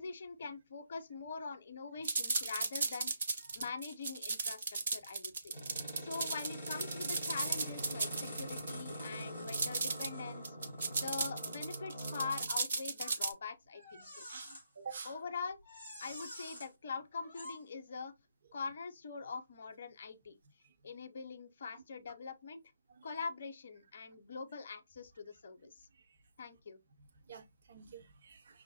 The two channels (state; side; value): inverted; both; correlation -0.77